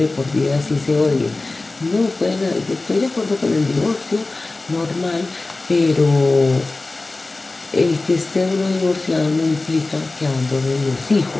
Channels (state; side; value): quieter; right; 3.2 dB